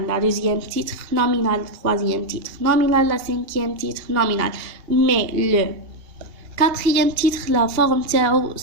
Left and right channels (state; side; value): late; left; 2.8 ms